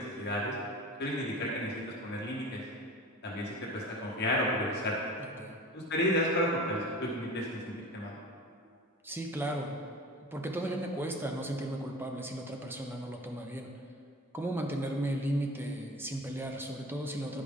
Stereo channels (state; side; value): normal; both; correlation 0.38